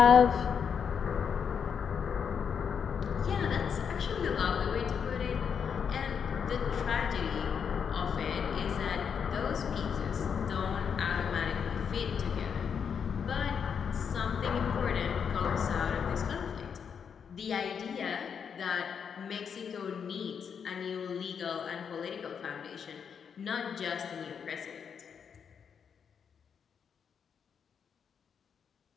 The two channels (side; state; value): right; quieter; 7.0 dB